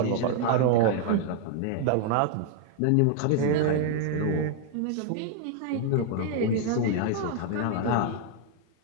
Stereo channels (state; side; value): different; both; correlation 0.00